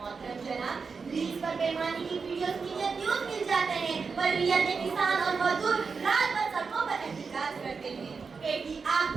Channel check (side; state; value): left; quieter; 5.1 dB